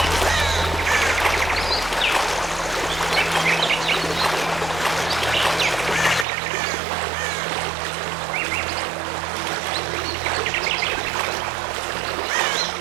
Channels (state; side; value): drops out; left; at 6.2 s